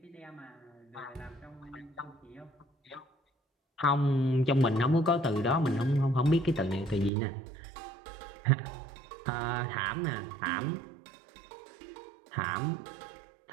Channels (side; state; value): left; drops out; at 7.1 s